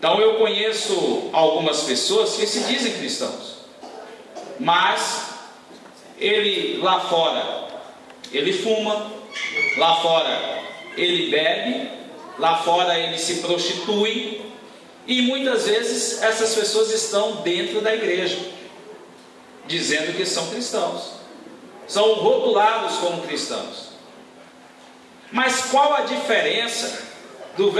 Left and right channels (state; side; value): identical; both; correlation 1.00